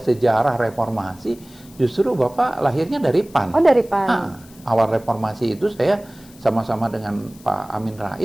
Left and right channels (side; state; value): left; noise; hiss, 24 dB below the sound